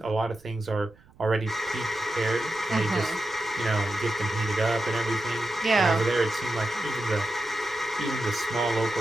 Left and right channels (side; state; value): right; noise; rumble, 27 dB below the sound